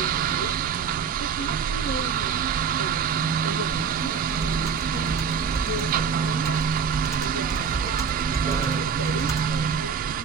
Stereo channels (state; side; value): quieter; left; 6.6 dB